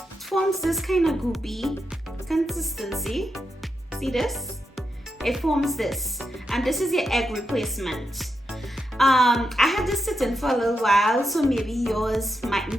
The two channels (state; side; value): normal; both; correlation 0.86